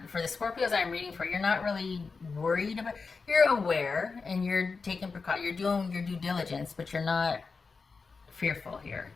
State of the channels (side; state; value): right; quieter; 4.6 dB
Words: for the Scorpios I'm reading for, you're not really worried about, you're aware and you're taking precaution, you're doing your due diligence, but you're not fearful here.